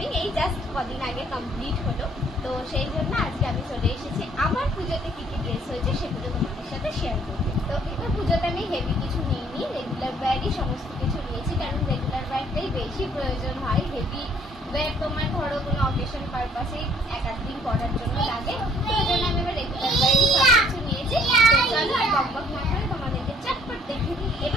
এই জাস্ট কদিন আগে কমপ্লিট হলো। তো সেই জন্য আজকে আমি চলে এসেছি আমার পুজোতে কি কি ড্রেস হয়েছে সেগুলো তোমাদের সাথে শেয়ার করতে। তো এবার পুজোতে আমি হেভি কিছু নিইনি, রেগুলার ওয়্যারই সমস্ত কিছু নিয়েছি, কারণ রেগুলার ওয়্যারটাই বেশি প্রয়োজন হয়। হেভি ওয়্যার তোমার ধরো কোনো অকেশন পারপাসে এক আধ দিন করার জন্য লাগে, তো এই জন্য আমি এবার রেগুলার ওয়্যারই সব কিছু নিয়েছি। তো চলো আর বকবক না করে তোমাদেরকে চটপট দেখিয়ে দিই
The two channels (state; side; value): normal; both; correlation 0.61